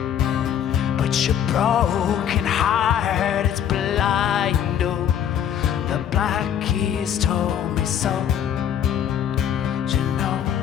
But your broken heart, it's blind, oh, the black keys told me so. You know,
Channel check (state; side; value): quieter; right; 9.5 dB